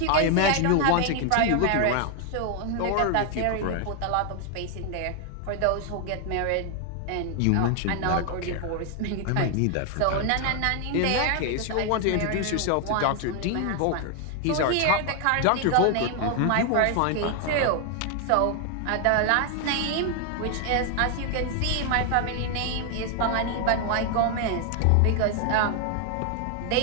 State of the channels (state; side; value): different; both; correlation 0.00